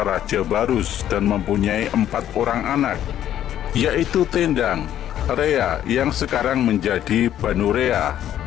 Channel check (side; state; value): right; quieter; 11.3 dB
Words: Raja Barus dan mempunyai 4 orang anak, yaitu Tendang, Rea yang sekarang menjadi Banurea,